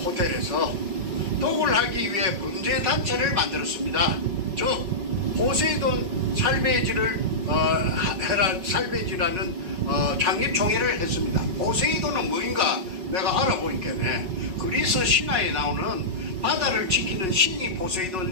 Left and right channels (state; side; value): late; left; 5.4 ms